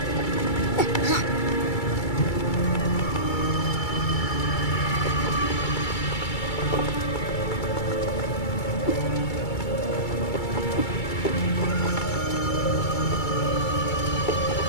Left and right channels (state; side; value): late; right; 2.3 ms